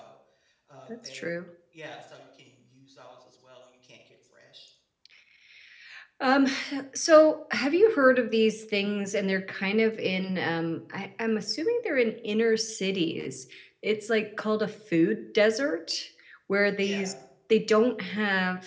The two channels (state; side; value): identical; both; correlation 1.00